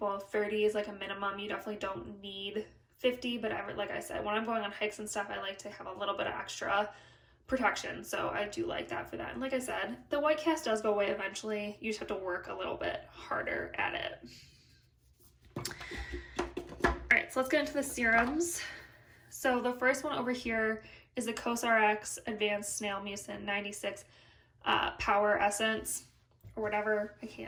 30 is like a minimum. You definitely don't need 50, but like I said, when I'm going on hikes and stuff, I like to have a little bit of extra protection. So I do like that for that. And like I said, the white cast does go away eventually. You just have to work a little bit harder at it. All right, so let's get into the serums. So the first one over here is the COSRX Advanced Snail Mucin 96 Power Essence, or whatever. I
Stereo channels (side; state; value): both; identical; correlation 1.00